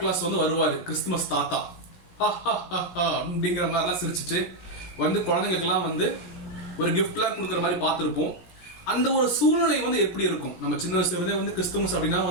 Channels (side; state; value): right; late; 17 ms